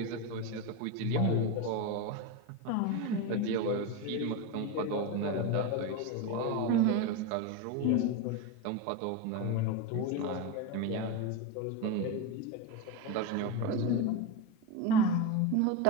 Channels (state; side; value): different; both; correlation 0.05